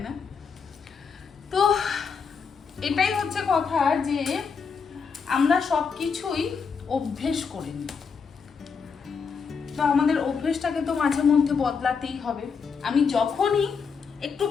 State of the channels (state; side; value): quieter; right; 5.7 dB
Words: না? তো এটাই হচ্ছে কথা, যে আমরা সব কিছুই অভ্যেস করে নিই। তো আমাদের অভ্যেসটাকে তো মাঝে মধ্যে বদলাতেই হবে। আমি যখনই একটু